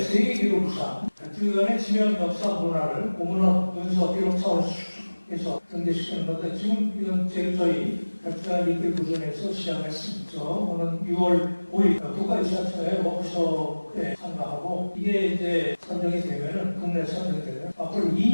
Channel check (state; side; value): inverted; both; correlation -1.00